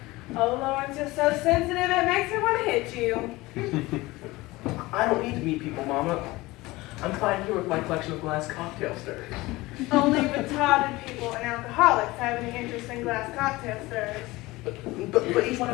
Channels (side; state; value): right; quieter; 20.3 dB